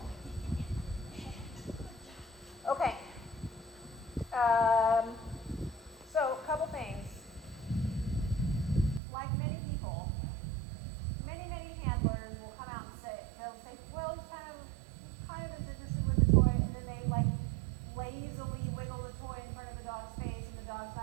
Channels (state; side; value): drops out; left; at 9.0 s